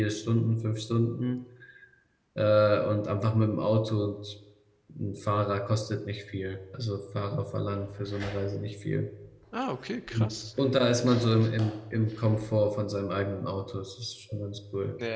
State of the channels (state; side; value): identical; both; correlation 1.00